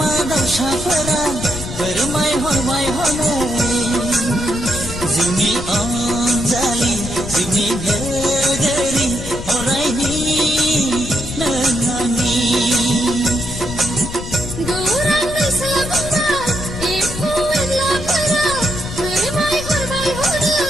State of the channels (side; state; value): left; noise; rumble, 9 dB below the sound